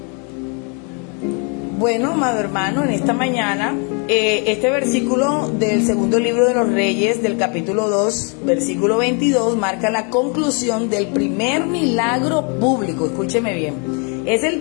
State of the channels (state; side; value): quieter; right; 36.7 dB